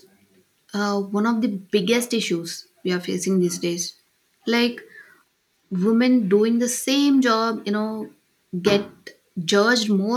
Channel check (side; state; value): both; identical; correlation 1.00